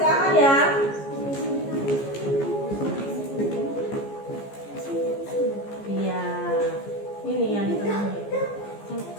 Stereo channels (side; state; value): right; late; 15 ms